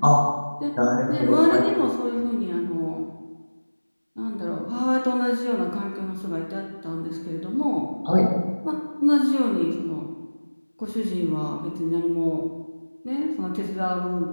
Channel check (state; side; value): inverted; both; correlation -1.00